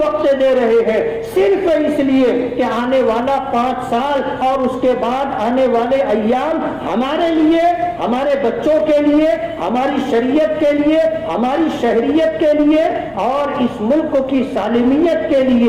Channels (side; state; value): left; noise; hum, 27 dB below the sound